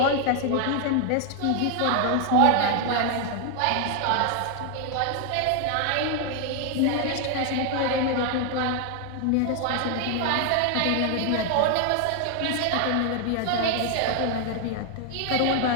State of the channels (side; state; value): both; different; correlation 0.00